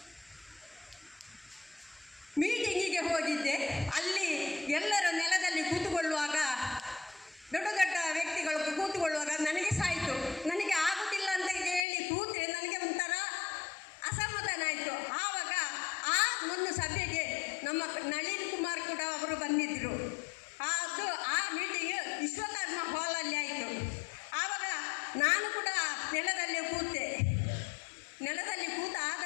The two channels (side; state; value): right; drops out; at 11.8 s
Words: ಮೀಟಿಂಗಿಗೆ ಹೋಗಿದ್ದೆ. ಅಲ್ಲಿ ಎಲ್ಲರ ನೆಲದಲ್ಲಿ ಕೂತುಕೊಳ್ಳುವಾಗ, ದೊಡ್ಡ ದೊಡ್ಡ ವ್ಯಕ್ತಿಗಳು ಕೂತುಕೊಳ್ಳುವಾಗ ನನಗೆ ಸಾಯಿತು. ನನಗೆ ಆಗುತ್ತಿಲ್ಲ ಅಂತ ಹೇಳಿ ಕೂತ್ರೆ ನನಗೆ ಒಂಥರ ಅಸಮಾಧಾನ ಆಯಿತು. ಆವಾಗ ಆ ಒಂದು ಸಭೆಗೆ ನಮ್ಮ ನಳಿನ್ ಕುಮಾರ್ ಕೂಡ ಅವರು ಬಂದಿದ್ದರು. ಆ ಮೀಟಿಂಗ್ ವಿಶ್ವಕರ್ಮ ಹಾಲಲ್ಲಿ ಆಯಿತು. ಆವಾಗ ನಾನು ಕೂಡ ನೆಲದಲ್ಲಿ ಕೂತೆ. ನೆಲದಲ್ಲಿ ಕೂತಾದ